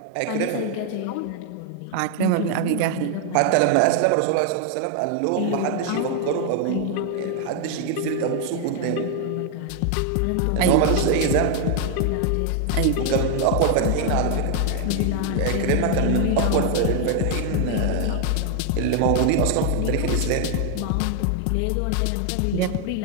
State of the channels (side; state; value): both; different; correlation 0.00